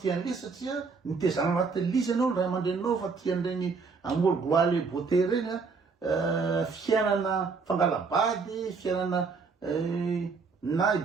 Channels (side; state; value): left; quieter; 4.8 dB